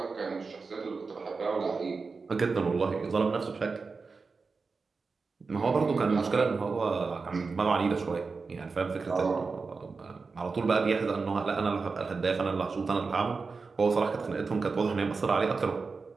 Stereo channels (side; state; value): left; quieter; 4.5 dB